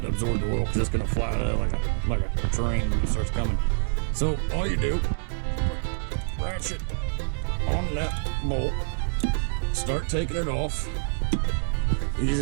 to absorb the oil, because it's going to fly out like a train when it starts coming. So all you do, ratchet on that bolt, start taking it off, ease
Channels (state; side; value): silent; left; digital silence